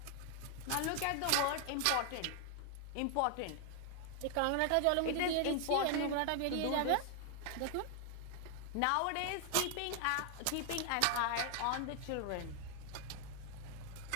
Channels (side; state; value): both; different; correlation 0.00